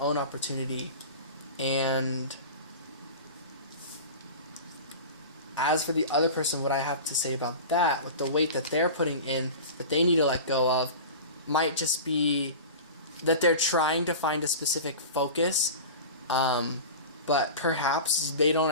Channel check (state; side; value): inverted; both; correlation -0.33